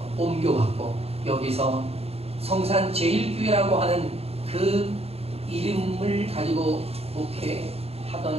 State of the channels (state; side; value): late; left; 0.29 ms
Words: 옮겨왔고, 여기서 성산 제일교회라고 하는 그 이름을 가지고